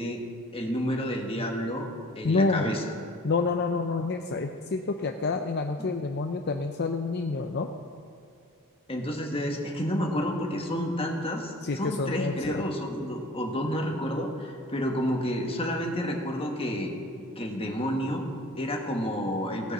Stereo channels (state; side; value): normal; both; correlation 0.47